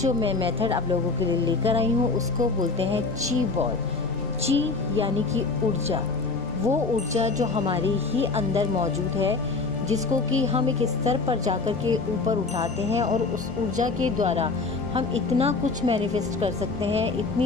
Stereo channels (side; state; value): right; quieter; 3.9 dB